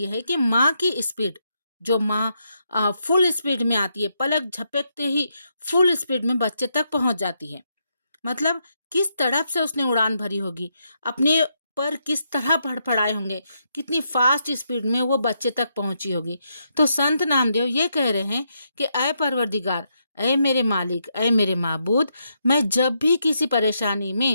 है कि माँ की स्पीड, जो माँ फुल स्पीड में आती है, पलक झपकते ही फुल स्पीड में बच्चे तक पहुंच जाती है। मतलब किस तड़प से उसने उड़ान भरी होगी, अपने पर किस तरह फड़फड़ाए होंगे, कितनी फास्ट स्पीड में वो बच्चे तक पहुंची होगी। तो संत नामदेव ये कह रहे हैं कि अय परवरदिगार, अय मेरे मालिक, अय मेरे माबूद, मैं जब भी किसी परेशानी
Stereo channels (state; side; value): inverted; both; correlation -0.80